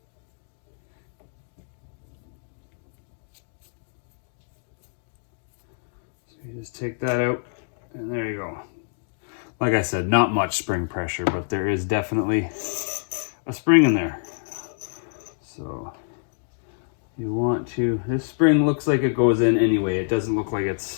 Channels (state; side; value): silent; right; digital silence